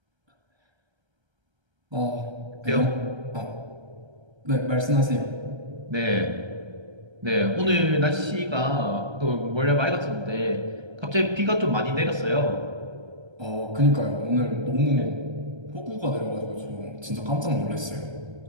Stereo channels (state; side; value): late; left; 1.3 ms